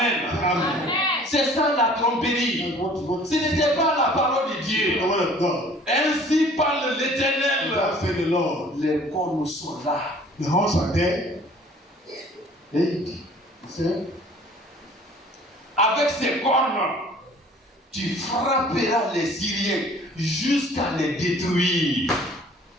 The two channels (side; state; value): both; normal; correlation 0.51